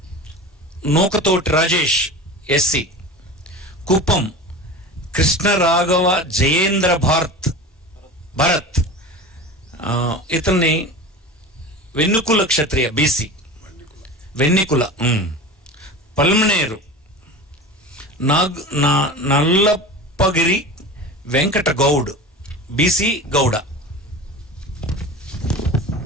Nookathoti Rajesh SC. Kuppam Krishnaraghava Jayendra Bharat ఇతన్ని Vannikula Kshatriya BC. Vannikula. Palamaner Nallappagari Venkata Goud BC Gowda.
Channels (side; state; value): both; normal; correlation 0.33